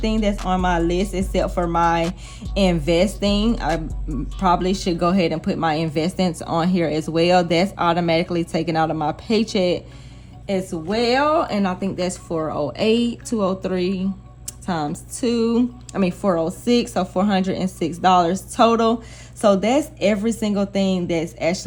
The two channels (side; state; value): both; identical; correlation 1.00